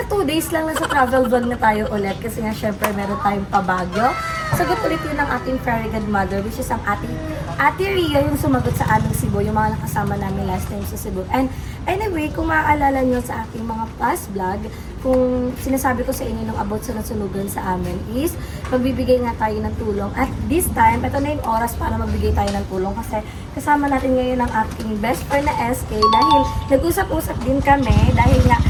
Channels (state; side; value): identical; both; correlation 1.00